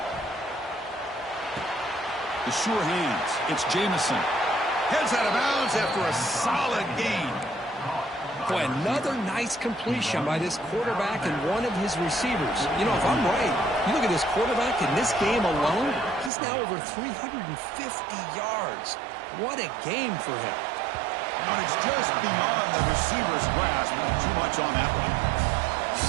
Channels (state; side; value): drops out; left; at 16.3 s